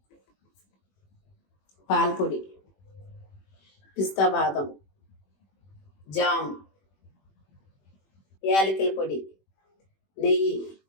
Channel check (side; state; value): right; late; 21 ms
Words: పాల పొడి, పిస్తా బాదం, జామ్, యాలకుల పొడి, నెయ్యి,